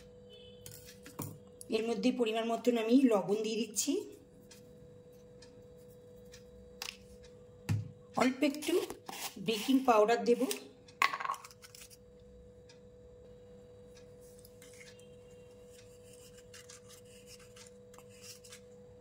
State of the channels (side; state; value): both; identical; correlation 1.00